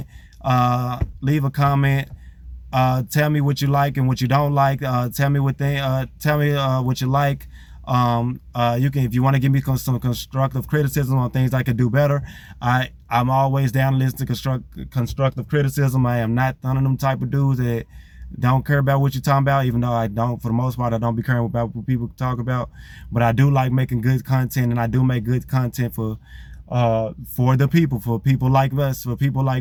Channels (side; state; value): both; identical; correlation 1.00